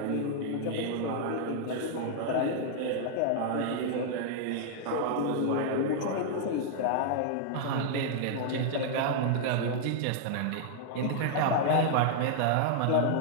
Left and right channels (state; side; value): different; both; correlation -0.01